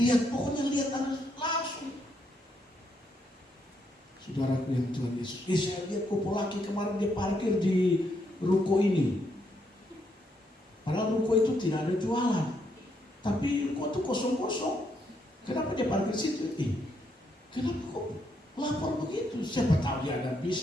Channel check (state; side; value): normal; both; correlation 0.76